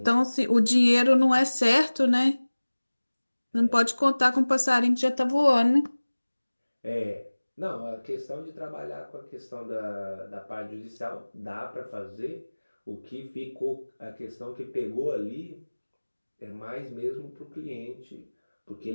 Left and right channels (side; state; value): both; inverted; correlation -1.00